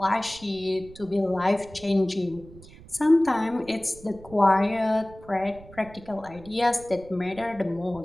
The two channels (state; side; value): noise; right; rumble, 20 dB below the sound